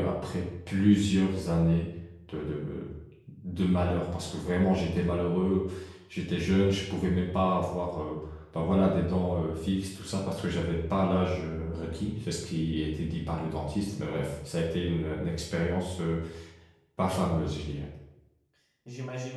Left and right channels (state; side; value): identical; both; correlation 1.00